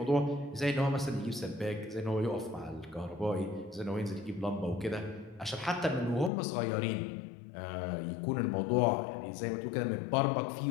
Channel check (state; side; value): drops out; right; at 6.3 s